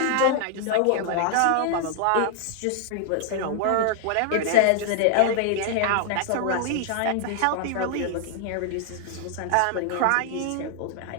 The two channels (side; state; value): both; different; correlation 0.00